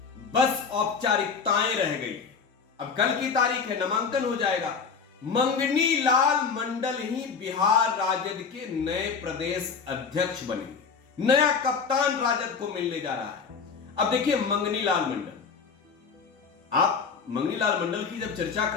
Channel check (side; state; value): right; quieter; 5.7 dB